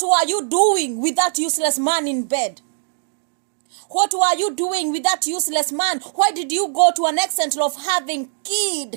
were you doing with that useless man in bed? What were you doing with that useless man? Why did you go to an extent of having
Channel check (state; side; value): silent; left; digital silence